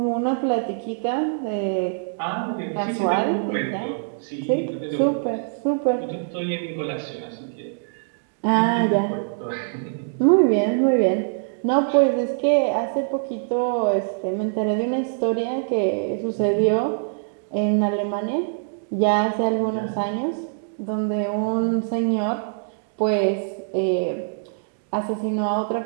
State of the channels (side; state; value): left; silent; digital silence